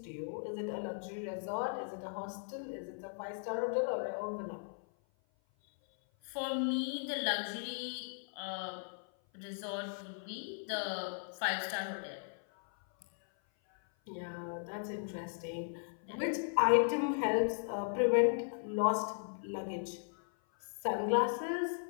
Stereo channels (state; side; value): silent; right; 53 dB below the other